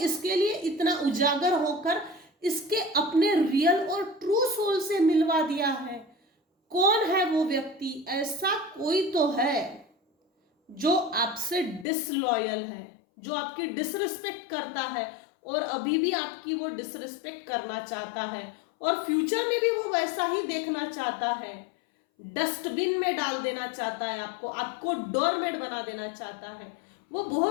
लिए इतना उजागर होकर इसके अपने रियल और ट्रू सोल से मिलवा दिया है, कौन है वो व्यक्ति। ऐसा कोई तो है जो आपसे डिसलॉयल है, जो आपकी डिसरिस्पेक्ट करता है और अभी भी आपकी वो डिसरिस्पेक्ट करना चाहता है और फ्यूचर में भी वो वैसा ही देखना चाहता है। डस्टबिन में डाल देना चाहता है आपको, आपको डोरमेट बना देना चाहता है। वो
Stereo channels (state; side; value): drops out; right; at 11.9 s